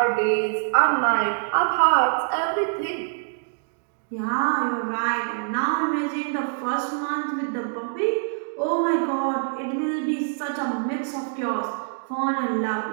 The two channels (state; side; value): silent; left; digital silence